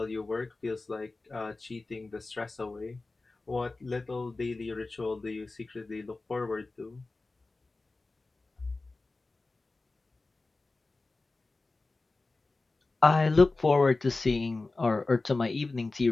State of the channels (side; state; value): right; quieter; 3.4 dB